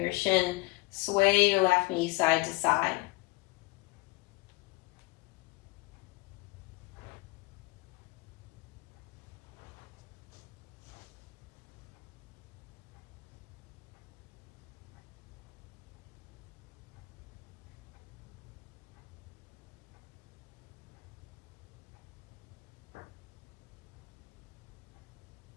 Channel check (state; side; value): quieter; right; 23.7 dB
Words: shin, sway your left knee side to side.